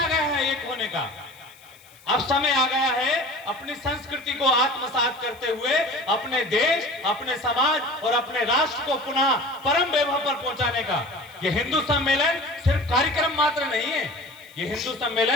गया है एक होने का, अब समय आ गया है अपनी संस्कृति को आत्मसात करते हुए अपने देश, अपने समाज और अपने राष्ट्र को पुनः परम वैभव पर पहुंचाने का। यह हिंदू सम्मेलन सिर्फ कार्यक्रम मात्र नहीं है, यह हिंदू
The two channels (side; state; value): left; noise; hiss, 26 dB below the sound